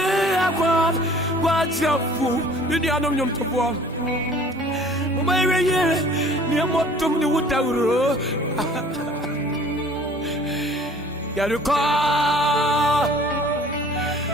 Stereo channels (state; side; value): normal; both; correlation 0.51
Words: akwa kwachefu. Ni anom to bo. Mama yeye ni motom ni wutawro. Yereko.